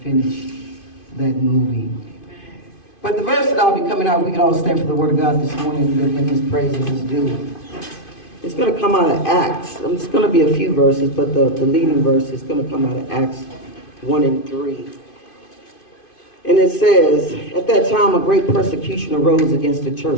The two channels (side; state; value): right; late; 2.5 ms